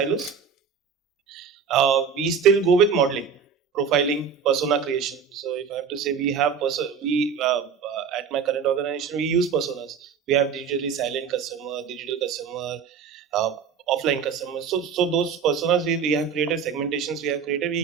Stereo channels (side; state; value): left; quieter; 6.5 dB